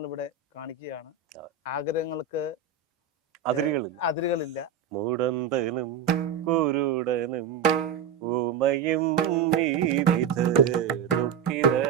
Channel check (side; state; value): left; quieter; 7.2 dB